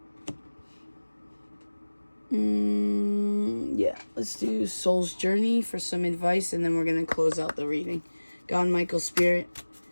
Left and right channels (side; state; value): both; inverted; correlation -1.00